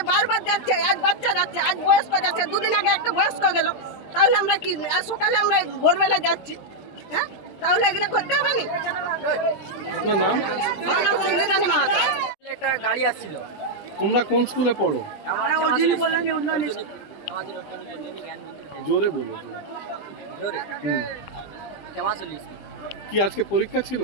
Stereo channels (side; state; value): right; late; 20 ms